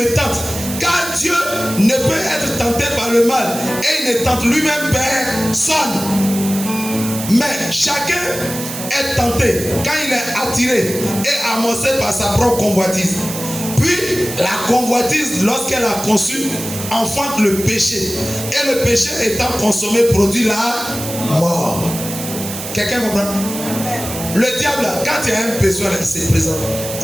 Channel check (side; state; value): right; noise; hiss, 8 dB below the sound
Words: tente. Car Dieu ne peut être tenté par le mal et il ne tente lui-même personne. Mais chacun est tenté quand il est attiré et amorcé par sa propre convoitise. Puis la convoitise, lorsqu'elle a conçu, enfante le péché. Et le péché étant consommé produit la mort. Quelqu'un comprend? Le diable, quand il y a un besoin, il se présente.